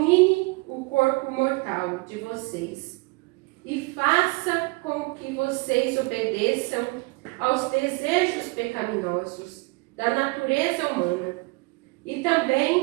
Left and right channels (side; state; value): left; quieter; 26.3 dB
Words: o corpo mortal de vocês, e faça com que vocês obedeçam aos desejos pecaminosos da natureza humana. E